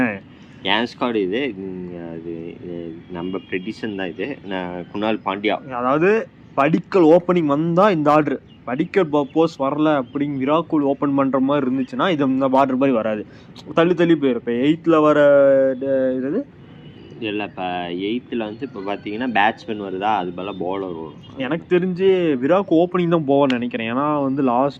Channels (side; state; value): both; identical; correlation 1.00